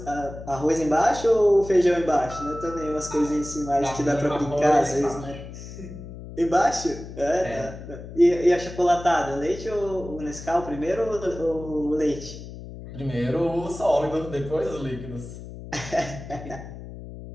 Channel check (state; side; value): noise; left; hum, 13 dB below the sound